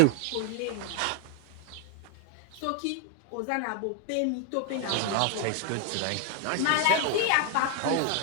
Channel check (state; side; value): different; both; correlation 0.00